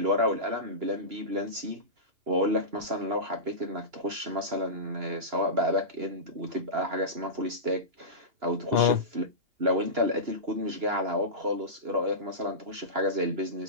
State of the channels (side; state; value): left; late; 2.9 ms